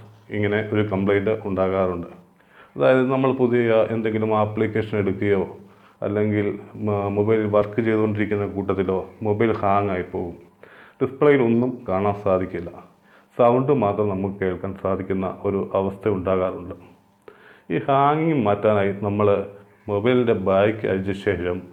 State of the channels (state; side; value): identical; both; correlation 1.00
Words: ഇങ്ങനെ ഒരു കംപ്ലൈൻറ്റ് ഉണ്ടാകാറുണ്ട്. അതായത് നമ്മൾ പുതിയ എന്തെങ്കിലും ആപ്ലിക്കേഷൻ എടുക്കുകയോ അല്ലെങ്കിൽ മൊബൈൽ വർക്ക് ചെയ്തുകൊണ്ടിരിക്കുന്ന കൂട്ടത്തിലോ മൊബൈൽ ഹാങ് ആയി പോകും. ഡിസ്പ്ലേയിൽ ഒന്നും കാണാൻ സാധിക്കില്ല. സൗണ്ട് മാത്രം നമുക്ക് കേൾക്കാൻ സാധിക്കുന്ന ഒരു അവസ്ഥ ഉണ്ടാകാറുണ്ട്. ഈ ഹാങ്ങിങ് മാറ്റാനായി നമ്മൾ മൊബൈലിൻ്റെ ബാക്ക് അഴിച്ച ശേഷം